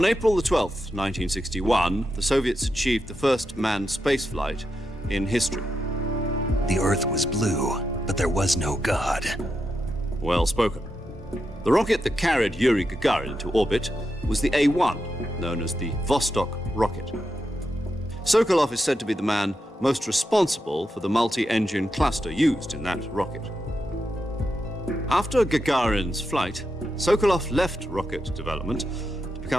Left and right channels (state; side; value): normal; both; correlation 0.86